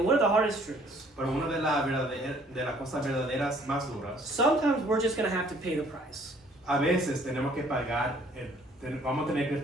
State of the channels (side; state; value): both; normal; correlation 0.59